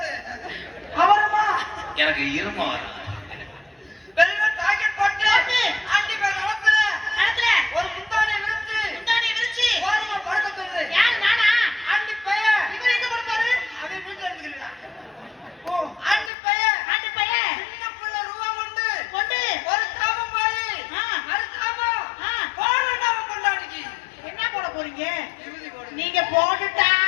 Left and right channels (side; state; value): right; drops out; at 16.3 s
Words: எனக்கு இரும வரும். ஒரு முந்தானை விரிச்சு ஓரமா படுக்க சொல்லு. யார் நானா? ஆண்டி பைய. இவர் எங்க படுப்பாரு? அவன் வீட்டுல இருக்குறா. ஓ ஆண்டி பைய சின்ன புள்ள ரூபா கொண்டு ஒரு சாபம் போய் அது சாபம் போடுடா கொண்டாடிக்கு. என்ன போட போறீங்க? நீங்க